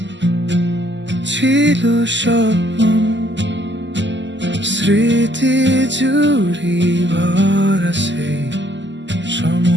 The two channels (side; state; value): left; late; 0.53 ms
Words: ছিল স্বপ্ন, স্মৃতি জুড়ি ভরা সেই